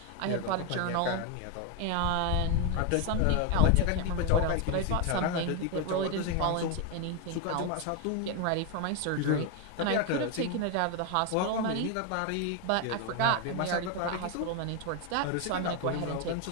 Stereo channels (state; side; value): different; both; correlation 0.01